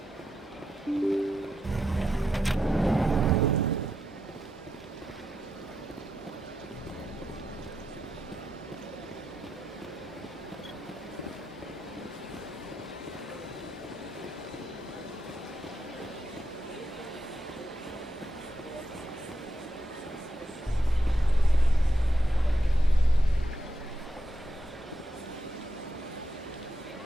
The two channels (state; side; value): normal; both; correlation 0.85